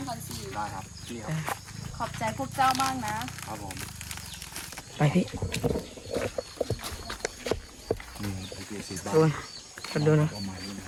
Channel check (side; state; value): both; identical; correlation 1.00